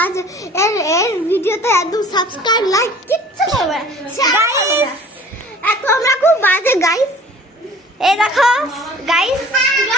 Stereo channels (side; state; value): both; normal; correlation 0.48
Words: এর ভিডিওতে একদম সাবস্ক্রাইব লাইক কিচ্ছু করবে না গাইস। তোমরা খুব বাজে গাইস। এই দেখো গাইস,